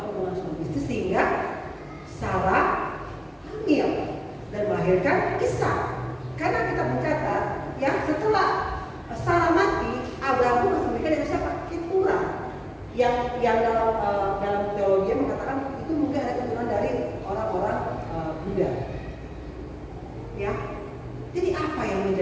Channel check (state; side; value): identical; both; correlation 1.00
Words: hubungan suami istri sehingga Sarah hamil dan melahirkan Ishak. Karena kita mencatat ya setelah Sarah mati, Abraham masih menikah dengan siapa? Keturah. Yang dalam teologi mengatakan itu mungkin ada keturunan dari orang-orang Buddha. Ya. Jadi apa yang